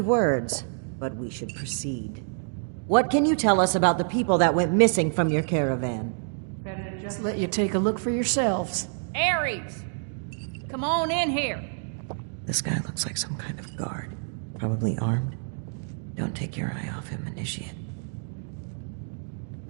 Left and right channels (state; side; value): silent; left; 60 dB below the other